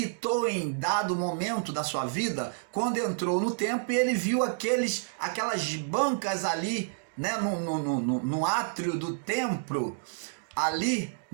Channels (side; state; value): left; silent; digital silence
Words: em dado momento da sua vida, quando entrou no templo e ele viu aquelas bancas ali, né, no átrio do templo, ali